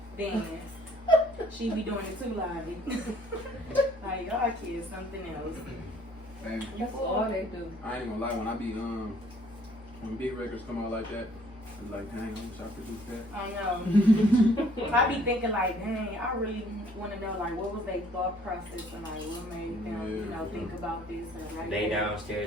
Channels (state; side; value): normal; both; correlation 0.59